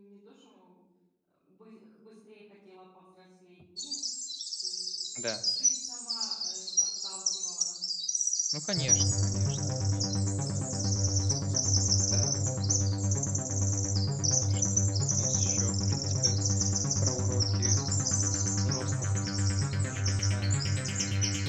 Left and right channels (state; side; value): identical; both; correlation 1.00